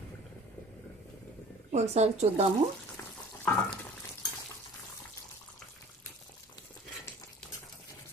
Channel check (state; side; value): normal; both; correlation 0.47